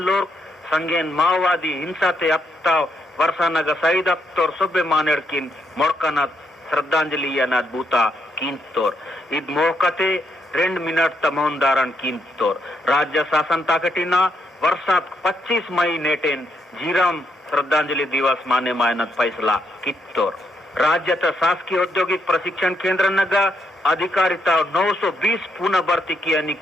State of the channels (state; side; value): normal; both; correlation 0.77